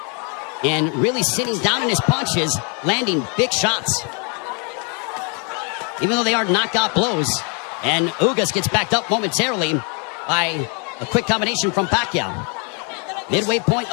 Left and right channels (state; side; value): quieter; right; 36.4 dB